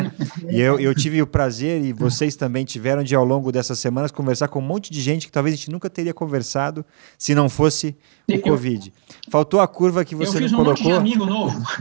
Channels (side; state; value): left; silent; digital silence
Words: E eu tive o prazer, e vocês também tiveram, de ao longo dessas semanas conversar com um monte de gente que talvez a gente nunca teria conversado se não fosse o Covid. Faltou a curva que você não colocou. Eu fiz um monte de amigo novo.